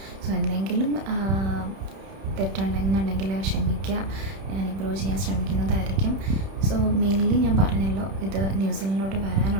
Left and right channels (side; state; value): left; late; 31 ms